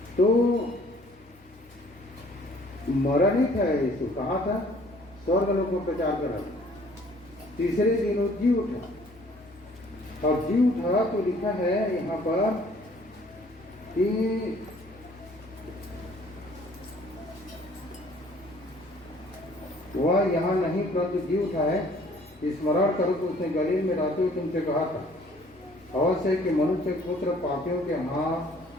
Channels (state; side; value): normal; both; correlation 0.57